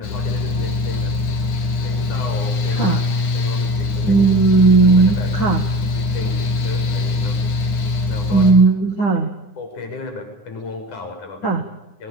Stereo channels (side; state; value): right; late; 9.8 ms